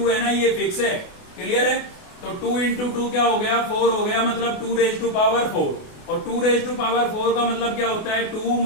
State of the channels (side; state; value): right; late; 28 ms